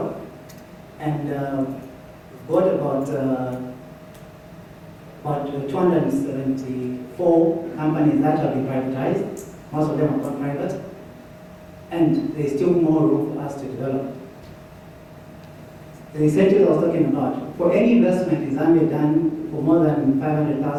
And we've got about 274 companies that have been privatized. Most of them are not private. And there's still more room for us to develop. The incentives I was talking about, for any investment in Zambia done for more than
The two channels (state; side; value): identical; both; correlation 1.00